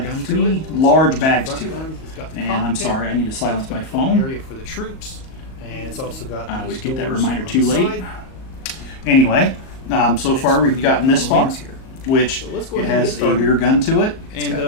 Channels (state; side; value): late; right; 38 ms